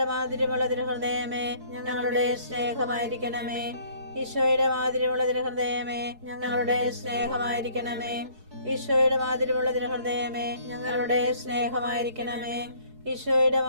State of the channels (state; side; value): late; left; 4.7 ms